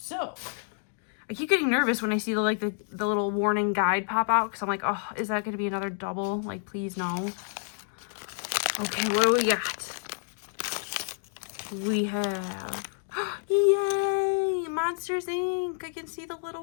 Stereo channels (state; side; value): silent; right; digital silence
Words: I keep getting nervous when I see the little warning guide pop out because I'm like, oh, is that going to be another double? Like, please no. Okay, what do we got? We have, yay, Monsters Inc. I can see the